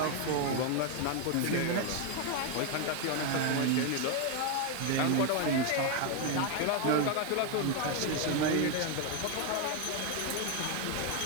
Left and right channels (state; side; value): different; both; correlation 0.01